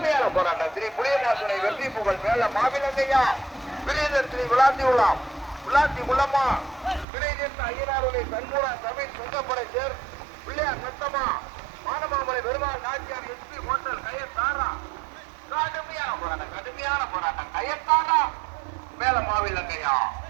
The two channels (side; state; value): left; drops out; at 7.1 s